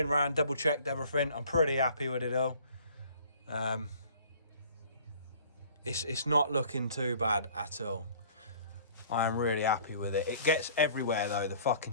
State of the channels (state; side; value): inverted; both; correlation -0.52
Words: around, double checked everything. I'm pretty happy with it all. It's not looking too bad at all. I am really happy with it. It gets everywhere though. The